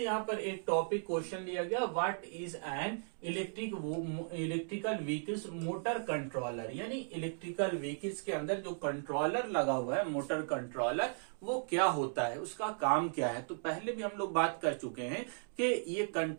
यहाँ पर एक टॉपिक क्वेश्चन लिया गया, what is an electrical vehicles motor controller, यानी इलेक्ट्रिकल व्हीकल्स के अंदर जो कंट्रोलर लगा हुआ है मोटर कंट्रोलर वो क्या होता है, उसका काम क्या है। तो पहले भी हम लोग बात कर चुके हैं कि ये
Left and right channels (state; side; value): silent; left; digital silence